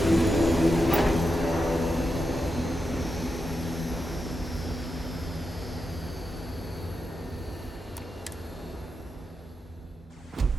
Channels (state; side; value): normal; both; correlation 0.87